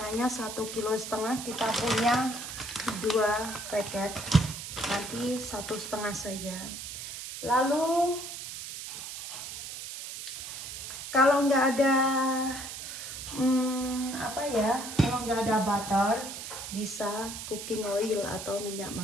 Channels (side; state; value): right; noise; hiss, 8 dB below the sound